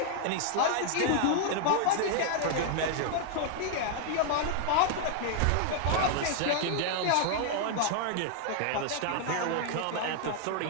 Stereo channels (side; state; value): both; different; correlation 0.00